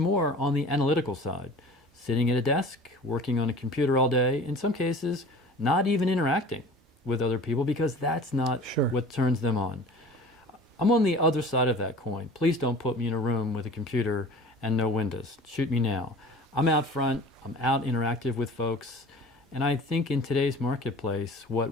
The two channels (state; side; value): normal; both; correlation 0.42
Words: on the analytical side, sitting at a desk, working on a computer all day, in some cases not even interacting with other people because that's not what turns them on. I'm on the other side of that coin. Please don't put me in a room with a computer and no windows. Shoot me now. I'm out front, I'm out interactive with folks, and I think in today's marketplace, what